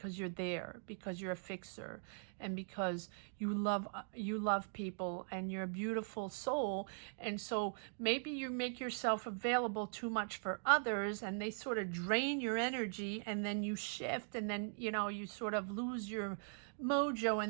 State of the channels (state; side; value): silent; left; digital silence